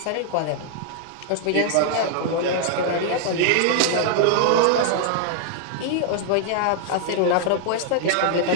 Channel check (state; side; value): different; both; correlation 0.00